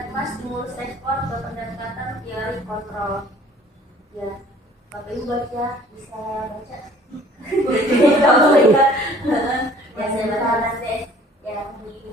stimulus respon ke pendekatan teori kontrol. Ya, Bapak Ibu baca, bisa baca. Ya saya baca nanti. Ya,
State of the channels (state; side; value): normal; both; correlation 0.53